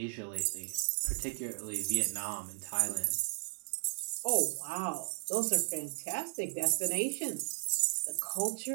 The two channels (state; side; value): silent; left; digital silence